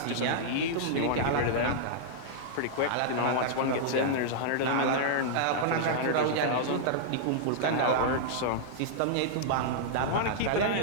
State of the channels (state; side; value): different; both; correlation -0.02